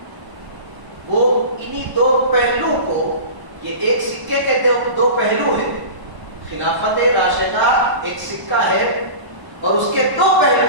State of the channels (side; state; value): left; late; 1.0 ms